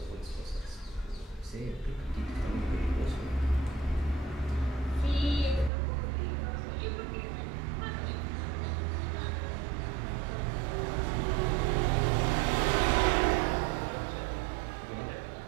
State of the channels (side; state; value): left; drops out; at 5.7 s